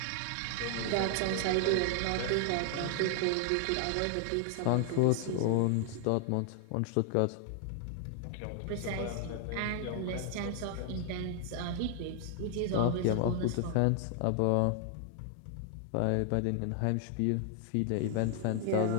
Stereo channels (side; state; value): both; different; correlation 0.00